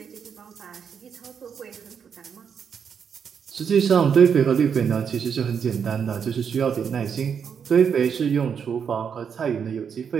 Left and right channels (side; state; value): left; quieter; 7.1 dB